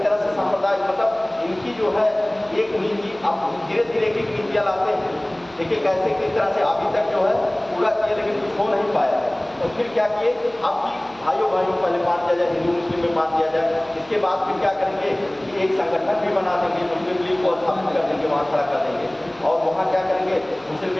तरह से सांप्रदायिक, मतलब इनकी जो है एक नीति, अब धीरे धीरे एक नीतियाँ लाते हैं। देखिए कैसे किस तरह से अभी तक जो है पूरा किया, लेकिन कुछ हो नहीं पाया है। तो फिर क्या किए, आपकी भाइयों पहले बांट दिया जाए, हिंदू मुस्लिम में बांट दिया जाए। इसके बाद फिर क्या करेंगे कि एक संगठन भी बना देंगे, मुस्लिम लीग को स्थापित कर देंगे, वहाँ खड़ा कर देंगे, और वहाँ क्या करेंगे, मुस्लिम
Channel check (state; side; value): noise; right; hum, 28 dB below the sound